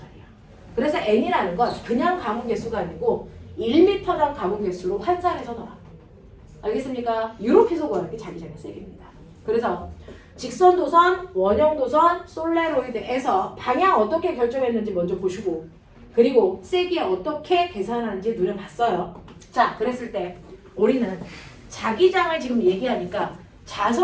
그래서 N이라는 건 그냥 감은 개수가 아니고 1m당 감은 개수로 환산해서 넣어라. 알겠습니까? 이렇게 해서 구하는 게 자기장의 세기입니다. 그래서 직선 도선, 원형 도선, 솔레로이드에서 방향 어떻게 결정했는지 먼저 보시고 그리고 세기 어떻게 계산하는지 누려봤어요. 자, 그랬을 때 우리는 자기장을 지금 얘기하니까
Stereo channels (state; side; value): identical; both; correlation 1.00